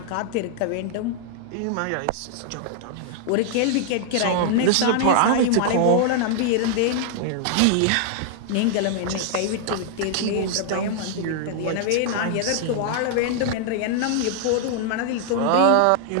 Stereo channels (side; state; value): both; different; correlation -0.01